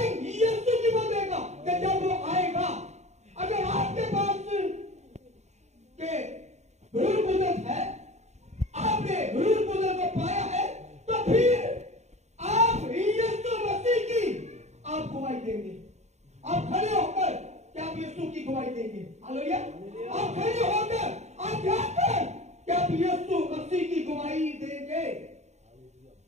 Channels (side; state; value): left; late; 0.33 ms